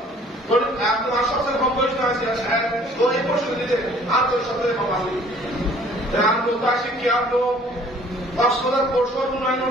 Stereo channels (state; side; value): normal; both; correlation 0.55